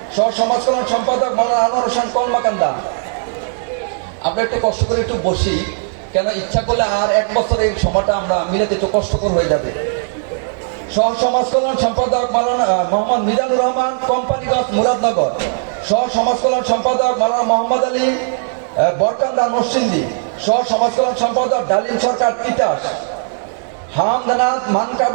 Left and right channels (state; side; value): silent; left; digital silence